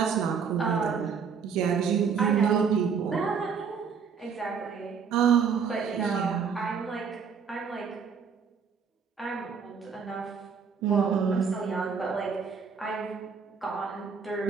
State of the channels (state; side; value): quieter; left; 6.2 dB